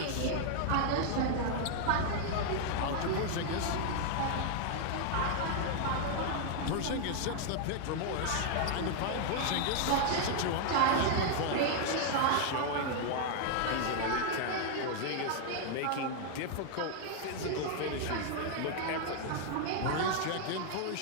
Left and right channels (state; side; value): different; both; correlation 0.00